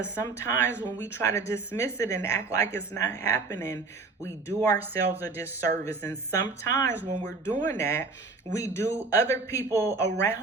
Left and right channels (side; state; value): left; quieter; 4.0 dB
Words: sometimes when we try to dismiss it and act like it's not happening, we do ourselves a disservice. And sometimes when we're doing that, we do other people